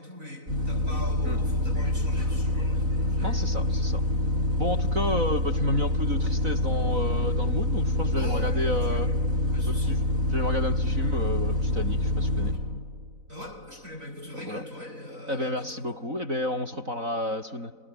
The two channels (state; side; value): late; left; 4.0 ms